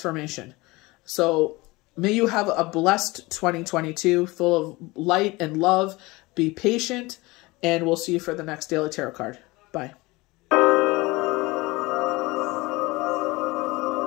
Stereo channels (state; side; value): quieter; right; 22.3 dB